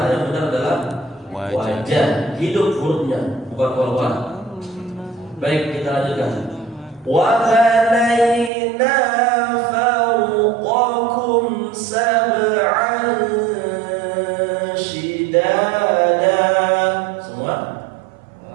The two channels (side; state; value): left; drops out; at 8.5 s